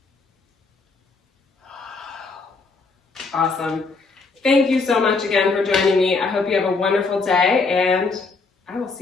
Awesome. Thank you so much again for joining me. I hope you have a wonderful day, and I will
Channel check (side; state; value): right; quieter; 4.2 dB